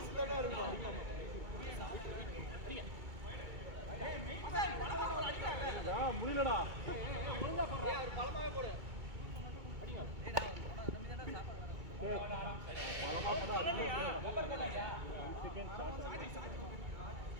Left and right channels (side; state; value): left; late; 2.2 ms